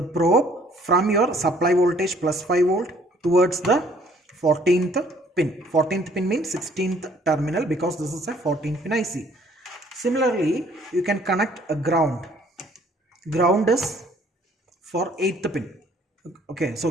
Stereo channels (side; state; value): both; normal; correlation 0.60